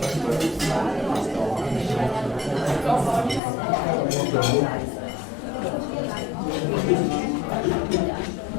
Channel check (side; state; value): right; drops out; at 3.4 s